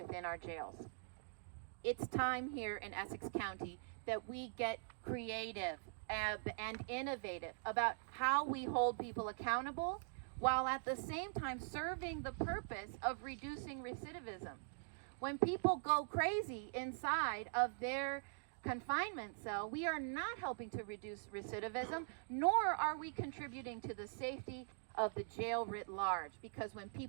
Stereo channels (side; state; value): left; silent; digital silence